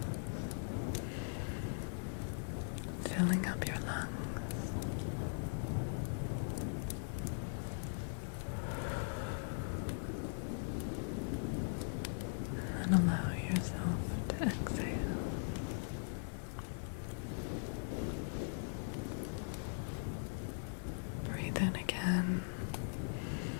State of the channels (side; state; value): right; silent; 51 dB below the other